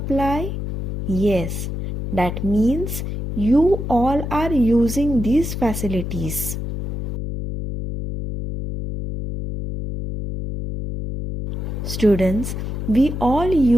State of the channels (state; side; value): noise; left; hum, 5 dB below the sound